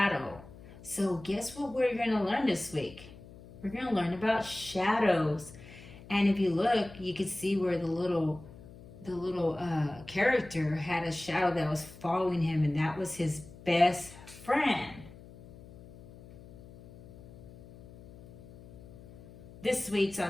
So guess what we're going to learn this week? We're going to learn about shadows. And if you look, you can see where the little character had a shadow that was following him, and that was his best friend. This week's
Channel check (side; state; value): left; noise; hum, 19 dB below the sound